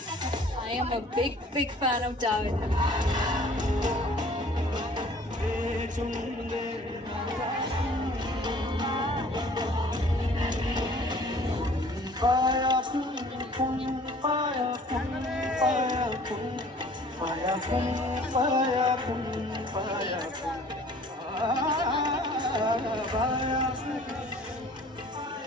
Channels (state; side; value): normal; both; correlation 0.52